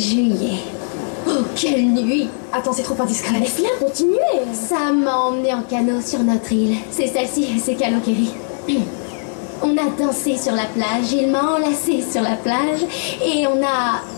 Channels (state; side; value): silent; right; digital silence